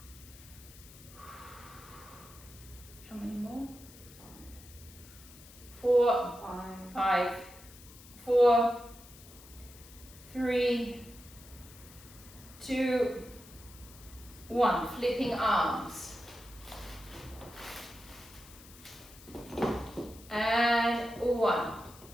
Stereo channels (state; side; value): noise; left; hiss, 20 dB below the sound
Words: How many more? 4, 5, 4, 3, 2, 1. Flipping arms. And 1,